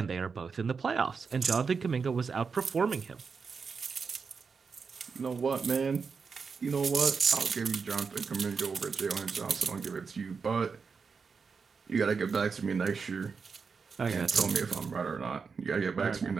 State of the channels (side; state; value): left; quieter; 5.3 dB